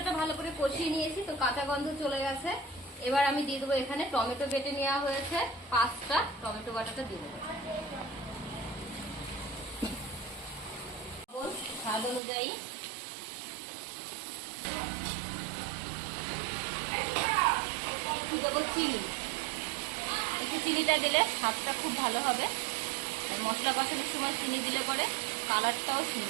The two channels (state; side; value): drops out; left; at 12.2 s